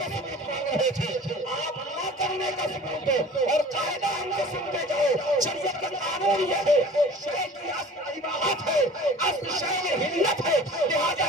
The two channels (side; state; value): both; normal; correlation 0.44